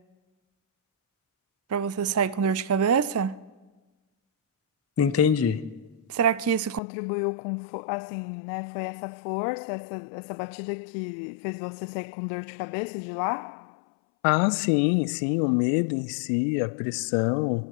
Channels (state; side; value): drops out; right; at 6.8 s